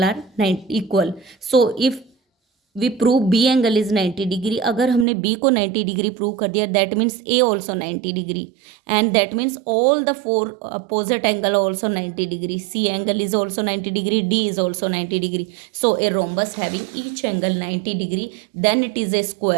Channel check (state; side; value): drops out; left; at 5.1 s